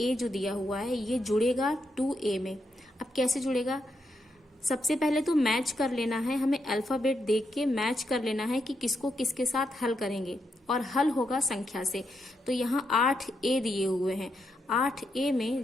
जो दिया हुआ है ये जुड़ेगा 2a में। अब कैसे जुड़ेगा, सबसे पहले तो मैच कर लेना है, हमें अल्फाबेट देख के मैच कर लेना है कि किसको किसके साथ हल करेंगे, और हल होगा संख्या से। तो यहाँ 8a दिए हुए हैं, 8a में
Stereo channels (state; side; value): normal; both; correlation 0.82